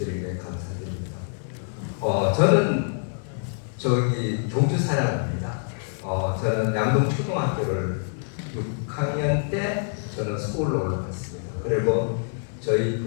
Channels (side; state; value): right; silent; digital silence